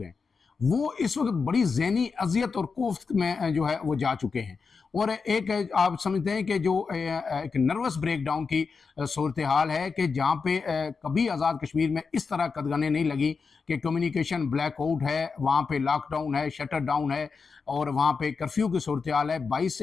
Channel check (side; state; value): right; quieter; 5.0 dB